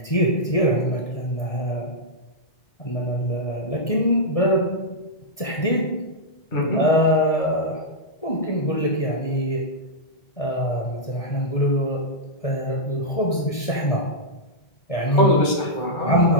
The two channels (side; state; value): right; late; 1.6 ms